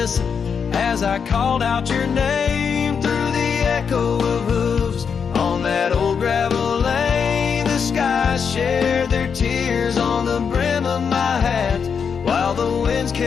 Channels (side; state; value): right; quieter; 6.5 dB